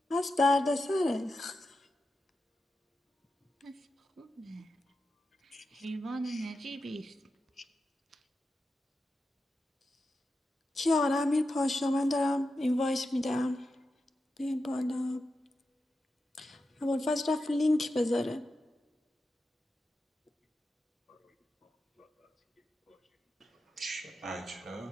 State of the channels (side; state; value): both; normal; correlation 0.90